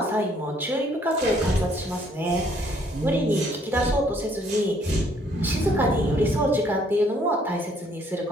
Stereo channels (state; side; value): normal; both; correlation 0.65